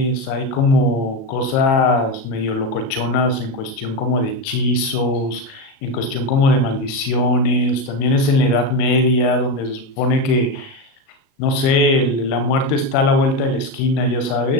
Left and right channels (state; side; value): late; right; 37 ms